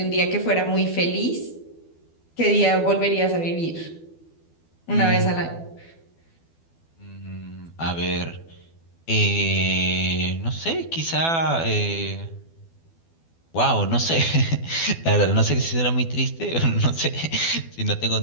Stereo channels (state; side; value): late; right; 12 ms